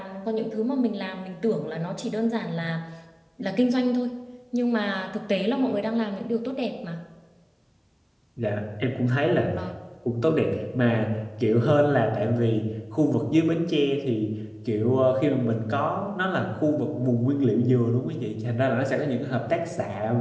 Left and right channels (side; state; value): both; identical; correlation 1.00